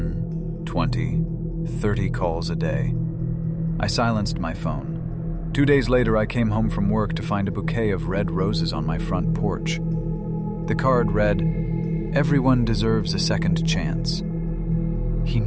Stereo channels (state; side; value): identical; both; correlation 1.00